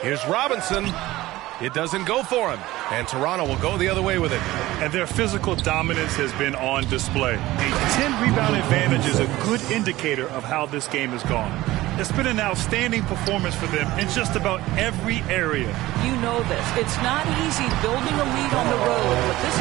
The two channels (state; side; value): quieter; left; 17.4 dB